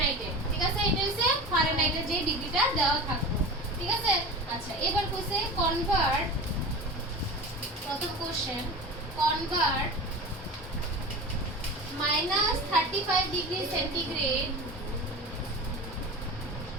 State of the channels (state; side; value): normal; both; correlation 0.31